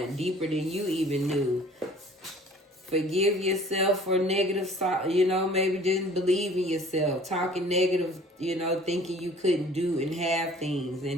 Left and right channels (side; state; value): both; normal; correlation 0.51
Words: deeper than you even knew. Forgive yourself for negative, maybe didn't believe in yourself. Talking negative, thinking you couldn't do and have things.